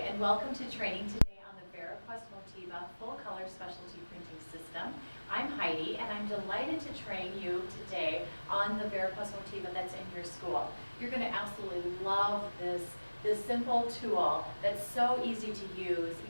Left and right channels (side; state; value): both; inverted; correlation -1.00